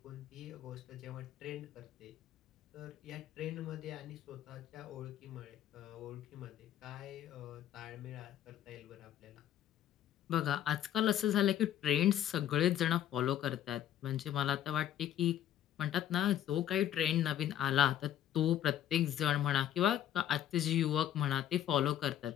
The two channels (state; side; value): quieter; right; 11.2 dB